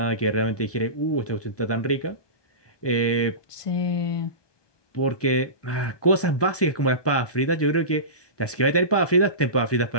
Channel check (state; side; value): late; right; 1.2 ms